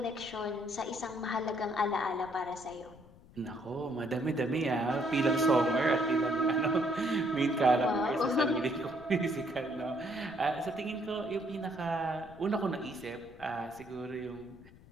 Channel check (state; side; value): noise; left; rumble, 22 dB below the sound